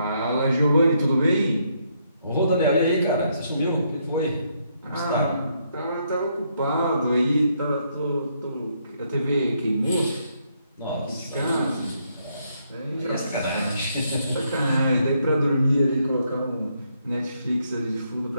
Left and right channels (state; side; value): inverted; both; correlation -0.75